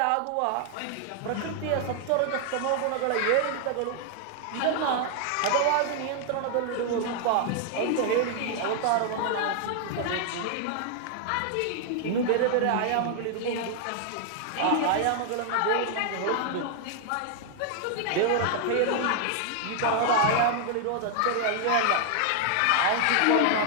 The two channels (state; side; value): different; both; correlation 0.00